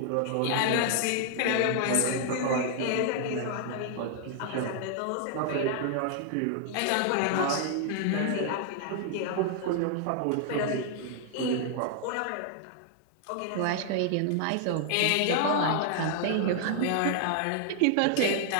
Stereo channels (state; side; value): different; both; correlation 0.00